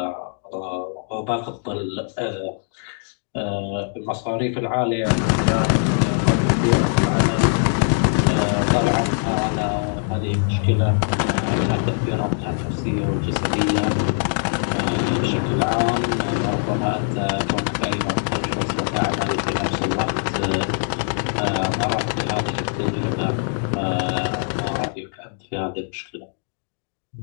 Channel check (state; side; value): silent; right; digital silence